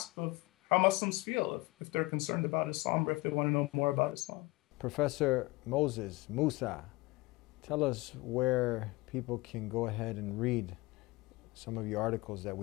of how Muslims feel if they're concerned about Islam or if they want to know more about Islam. Professor Musa, tell us where people can go ahead and read some of your articles that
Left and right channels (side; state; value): right; quieter; 22.5 dB